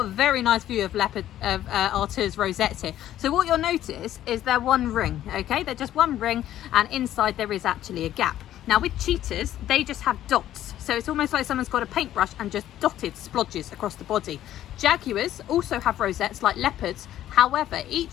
a very nice view of Artur's rosettes here. So what you'll notice is they're one ring, okay? They're just one ring, and inside there is actually a gap. Now with cheetahs, they just have dots. So it's almost like someone's got a paintbrush and just dotted splodges across the body. Jaguars also have rosettes like leopards. However,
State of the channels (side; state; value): right; quieter; 12.4 dB